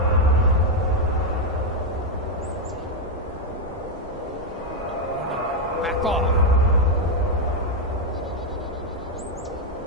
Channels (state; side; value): normal; both; correlation 0.03